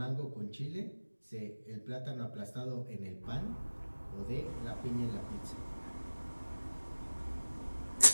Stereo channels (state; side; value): inverted; both; correlation -1.00